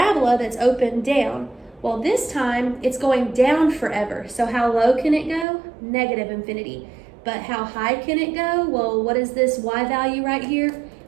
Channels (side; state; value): left; drops out; at 5.5 s